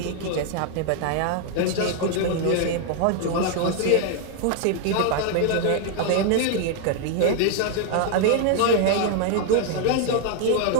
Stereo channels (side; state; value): both; different; correlation 0.00